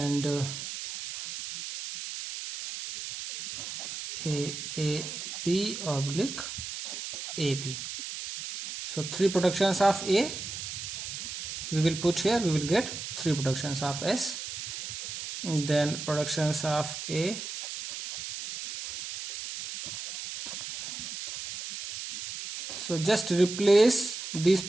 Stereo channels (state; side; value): noise; right; hiss, 7 dB below the sound